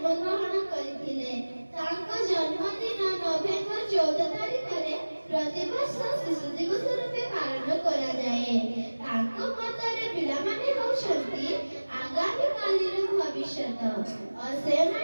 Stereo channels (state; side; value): inverted; both; correlation -1.00